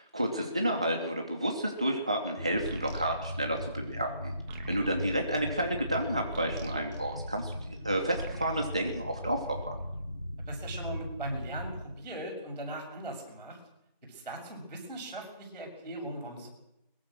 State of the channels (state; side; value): inverted; both; correlation -0.67